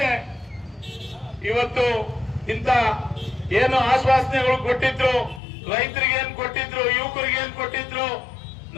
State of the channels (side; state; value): right; drops out; at 5.4 s